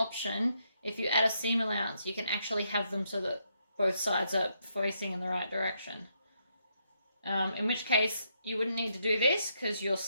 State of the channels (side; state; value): both; inverted; correlation -0.77